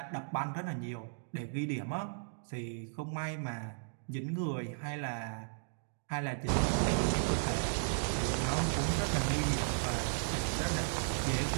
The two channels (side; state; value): left; silent; digital silence